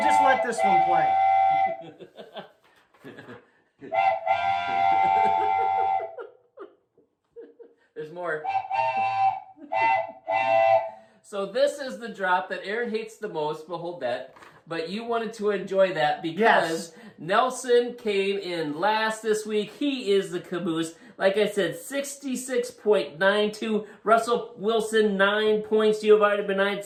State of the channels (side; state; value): both; identical; correlation 1.00